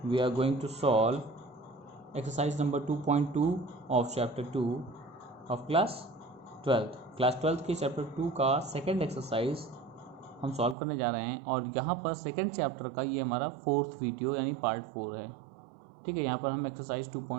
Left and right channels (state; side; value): drops out; left; at 10.8 s